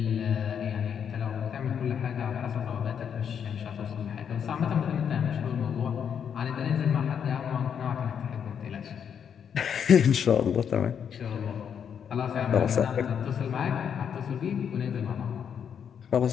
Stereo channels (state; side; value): quieter; right; 7.9 dB